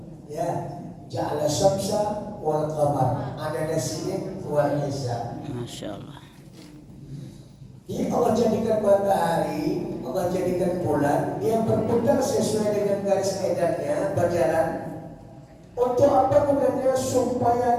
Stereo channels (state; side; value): identical; both; correlation 1.00